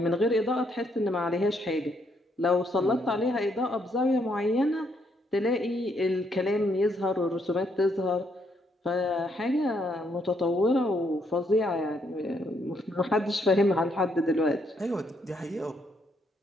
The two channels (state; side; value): normal; both; correlation 0.73